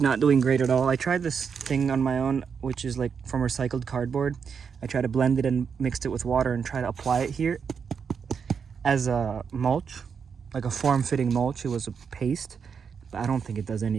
doing great at all. I tried this thing on my own, which is like from recycled cardboard. I tried to blend it and mixed it with water and try to apply it here as a mulch, like a form-fitting mulch. It was a paste, but I don't think it does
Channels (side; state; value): left; quieter; 6.5 dB